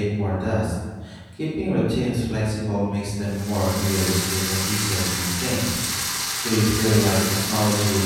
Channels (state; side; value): identical; both; correlation 1.00